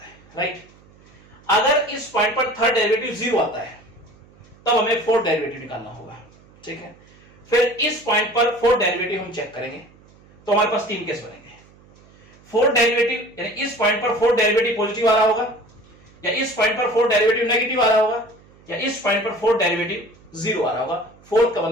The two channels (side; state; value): right; noise; hum, 27 dB below the sound